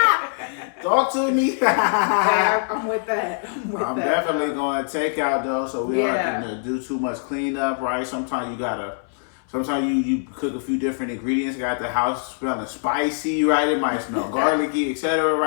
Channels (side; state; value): right; silent; 63 dB below the other